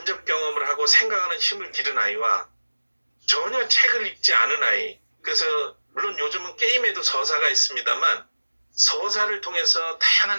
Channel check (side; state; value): both; inverted; correlation -1.00